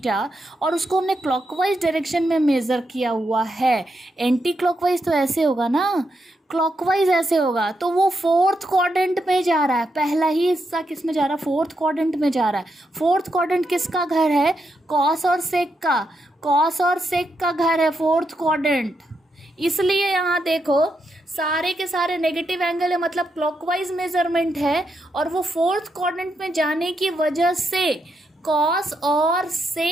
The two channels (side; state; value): both; normal; correlation 0.82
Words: और उसको हमने क्लॉकवाइज डायरेक्शन में मेज़र किया हुआ है. एंटी क्लॉकवाइज तो ऐसे होगा ना, क्लॉकवाइज ऐसे होगा, तो वो फोर्थ क्वाड्रेंट में जा रहा है. पहला ही हिस्सा किस में जा रहा है, फोर्थ क्वाड्रेंट में जा रहा है. फोर्थ क्वाड्रेंट किसका घर है, कॉस और सेक का. कॉस और सेक का घर है फोर्थ क्वाड्रेंट. इसलिए यहाँ देखो सारे के सारे नेगेटिव एंगल है, मतलब क्लॉकवाइज मेजरमेंट है और वो फोर्थ क्वाड्रेंट में जाने की वजह से कॉस और